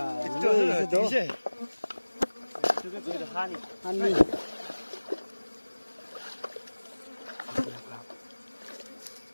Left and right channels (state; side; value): inverted; both; correlation -1.00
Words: 이제. 저게 저기 한이. 한이.